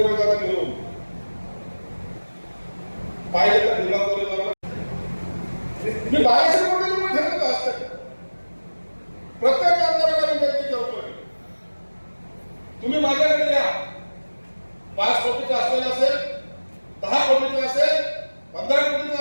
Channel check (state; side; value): inverted; both; correlation -1.00